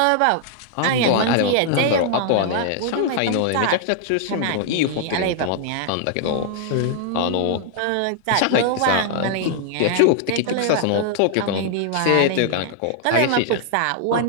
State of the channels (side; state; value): both; different; correlation 0.00